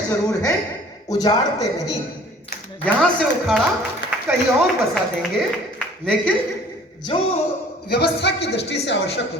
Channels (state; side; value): normal; both; correlation 0.51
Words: जरूर हैं, उजाड़ते नहीं। यहां से उखाड़ा कहीं और बसा देंगे, लेकिन जो व्यवस्था की दृष्टि से आवश्यक